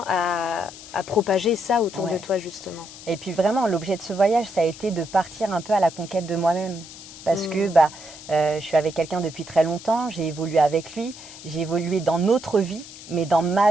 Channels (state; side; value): noise; left; hiss, 16 dB below the sound